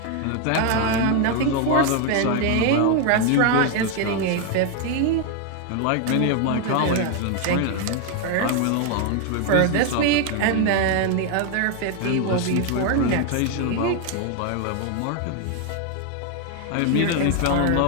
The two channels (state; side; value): different; both; correlation 0.01